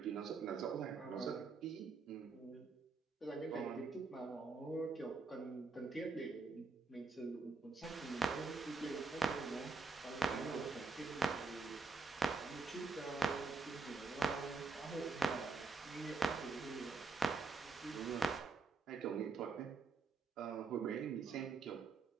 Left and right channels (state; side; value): quieter; left; 4.1 dB